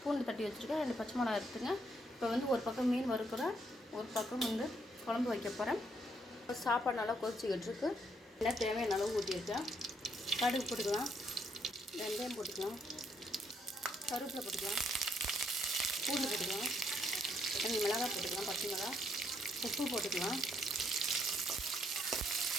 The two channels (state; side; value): normal; both; correlation 0.72